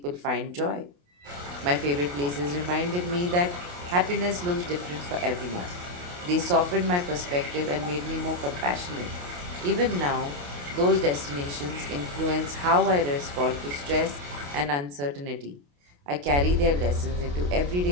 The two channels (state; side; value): late; left; 28 ms